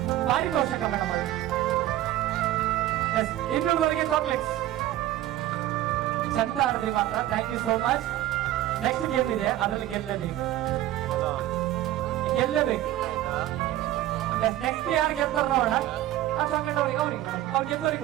ಪಾರಿತೋಷಕ ಮೇಡಮ್ ಅವರು. ಇನ್ನೊಂದುವರೆಗೆ ಚಾಕ್ಲೇಟ್ಸ್. ಚಂದ ಆಡಿದ್ರಿ ಮಾತ್ರ. Thank you so much. Next game ಇದೆ, ಅದರಲ್ಲಿ ಗೆಲ್ಲಬೇಕು. ನೆಕ್ಸ್ಟ್ ಯಾರು ಗೆಲ್ತಾರ ನೋಡೋಣ. ಅವ್ರು ಗೆದ್ದವ್ರಿಗೆ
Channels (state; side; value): quieter; left; 14.2 dB